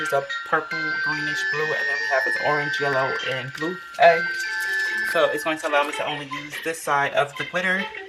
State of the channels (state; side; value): identical; both; correlation 1.00